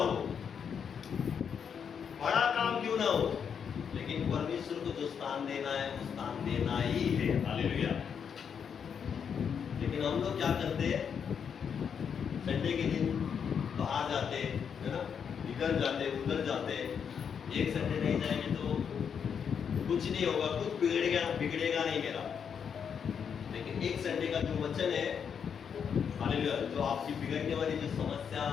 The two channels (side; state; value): right; quieter; 7.2 dB